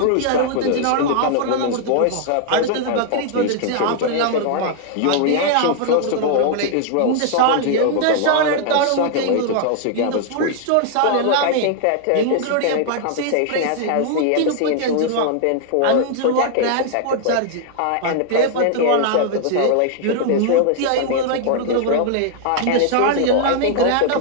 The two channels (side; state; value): both; different; correlation -0.01